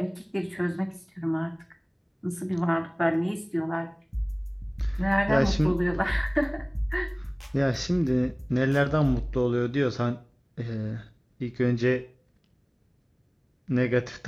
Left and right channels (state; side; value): identical; both; correlation 1.00